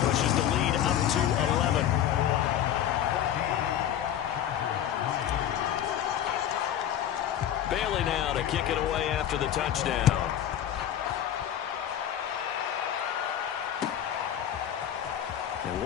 pushes the lead up to 11. Bailey now to kick it away after the touchdown. And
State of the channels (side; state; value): right; quieter; 10.4 dB